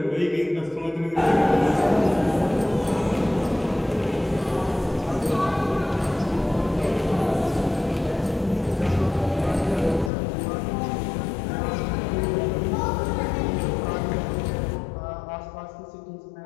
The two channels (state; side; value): drops out; right; at 10.1 s